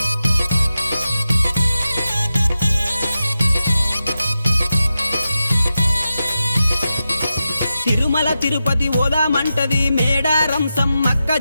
తిరుమల తిరుపతి ఓదామంటది మేడారం సమ్మక్క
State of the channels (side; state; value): both; inverted; correlation -0.91